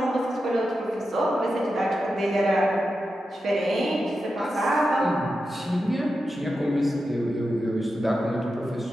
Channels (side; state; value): both; normal; correlation 0.90